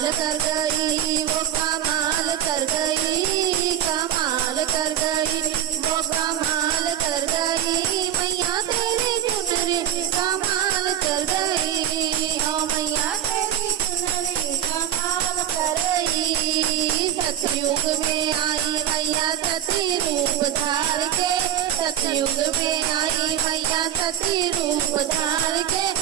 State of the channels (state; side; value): quieter; left; 10.9 dB